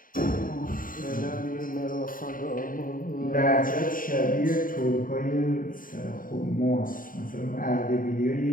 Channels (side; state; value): right; late; 0.40 ms